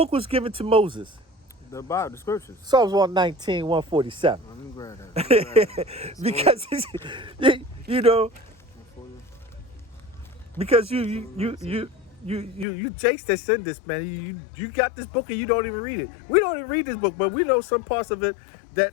was given to Moses? The Bible, the scriptures. Psalms 119, 147. Let me grab that. Because you know, because you Jakes that send this, man. You got this book and you don't even read it. We don't even read this book, but we know some parts of it that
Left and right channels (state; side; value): drops out; right; at 12.7 s